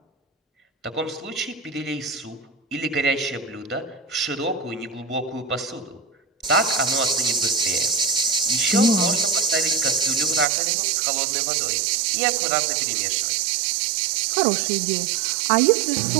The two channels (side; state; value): left; drops out; at 10.5 s